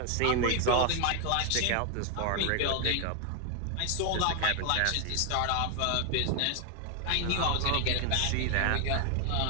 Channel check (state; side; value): different; both; correlation 0.00